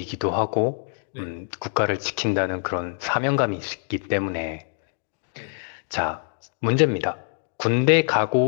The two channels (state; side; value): silent; right; digital silence